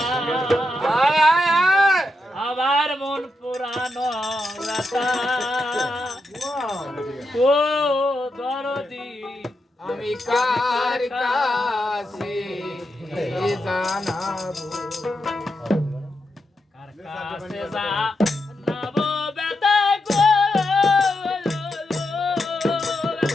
আবার মন পুরানো বেতা ও দরদি আমি কার কাছে জানাবো কার কাছে যা নাবো বেতা গো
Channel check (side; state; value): both; normal; correlation 0.85